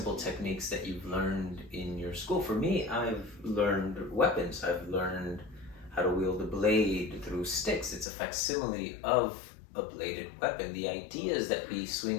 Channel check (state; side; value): drops out; right; at 8.1 s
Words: techniques that you've learned in your school? For me, I've learned weapons. I've learned how to wield a blade through sticks. It's a facsimile of a bladed weapon. The ideas that we